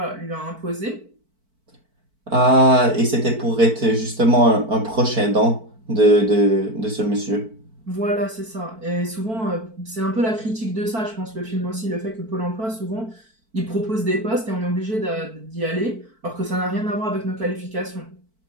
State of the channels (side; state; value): left; late; 4.5 ms